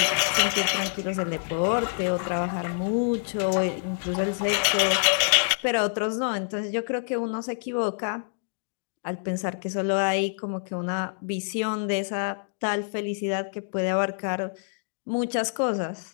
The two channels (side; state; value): right; silent; digital silence